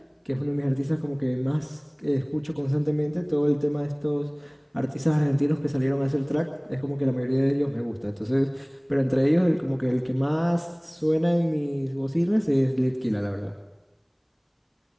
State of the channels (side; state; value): both; identical; correlation 1.00